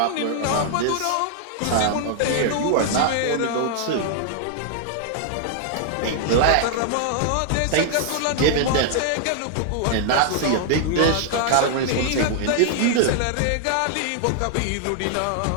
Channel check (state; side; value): different; both; correlation 0.00